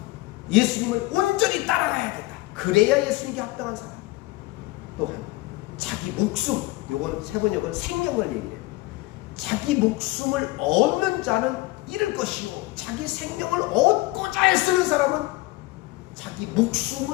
예수님을 온전히 따라가야 된다. 그래야 예수님께 합당한 사람이다. 또한 자기 목숨, 요거는 세 번역은 생명을 얘기해요. 자기 목숨을 얻는 자는 잃을 것이요, 자기 생명을 얻고자 애쓰는 사람은 자기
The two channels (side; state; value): right; quieter; 20.5 dB